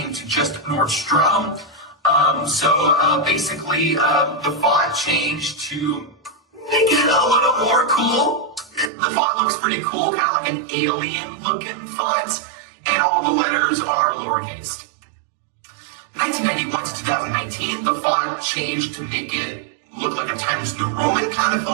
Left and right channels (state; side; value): drops out; left; at 8.9 s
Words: to just Nordstrom. Basically, the font changed to make it a little more cool. The font looks pretty cool, kind of like an alien-looking font, and all the letters are lowercase. 1991 to 2019, the font changed to make it look like a Times New Roman kind of